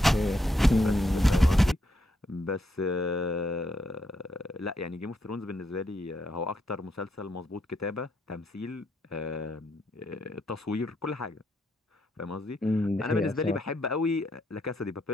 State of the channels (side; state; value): both; normal; correlation 0.77